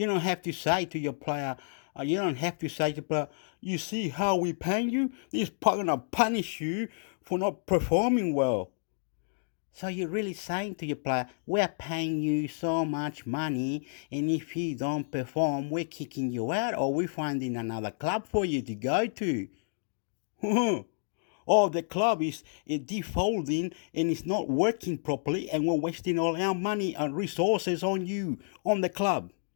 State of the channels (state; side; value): silent; right; digital silence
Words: have to say to your player, you don't have to say to player, you see how we paying you? This gonna punish you for not performing well. So you're really saying to your player, we're paying you so much money, and if you don't perform, we're kicking you out, or we're finding another club for you to go to. Or the club is defaulting and it's not working properly, and we're wasting all our money and resources on you, on the club.